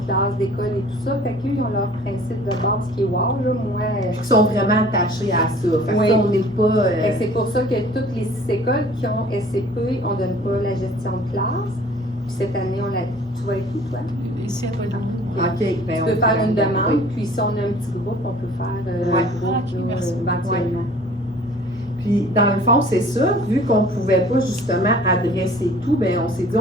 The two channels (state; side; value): normal; both; correlation 0.50